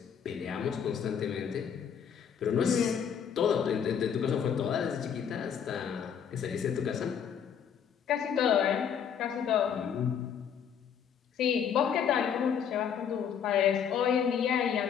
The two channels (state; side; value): quieter; right; 7.9 dB